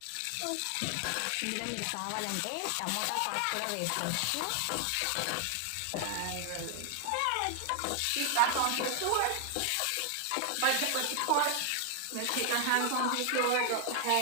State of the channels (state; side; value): different; both; correlation 0.00